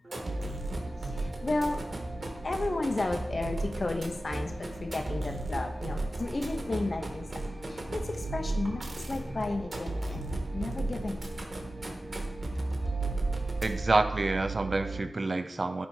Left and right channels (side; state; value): both; normal; correlation 0.94